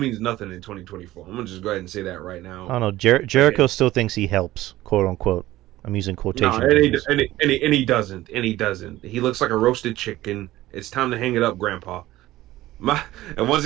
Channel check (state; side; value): quieter; left; 16.1 dB